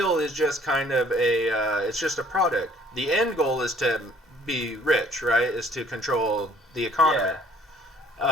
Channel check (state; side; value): normal; both; correlation 0.57